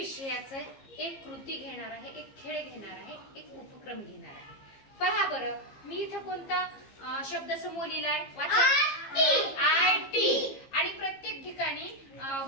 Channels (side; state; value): right; late; 15 ms